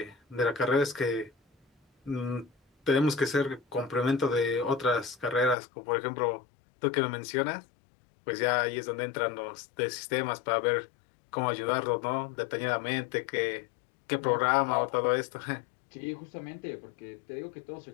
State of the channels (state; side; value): drops out; right; at 5.6 s